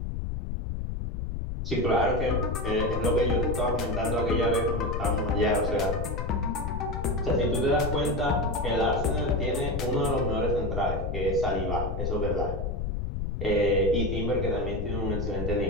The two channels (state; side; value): noise; left; rumble, 3 dB below the sound